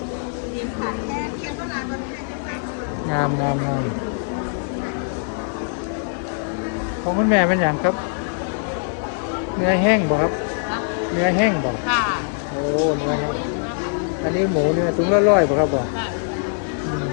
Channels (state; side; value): silent; right; 64 dB below the other